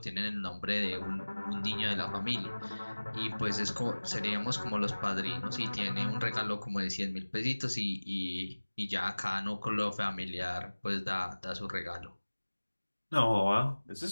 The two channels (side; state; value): both; inverted; correlation -1.00